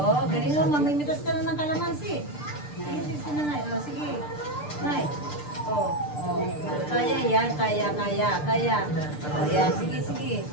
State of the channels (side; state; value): right; late; 6.7 ms